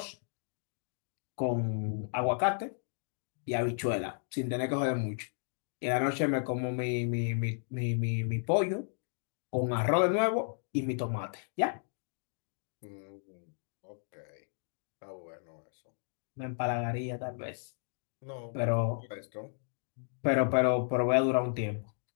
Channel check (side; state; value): right; silent; digital silence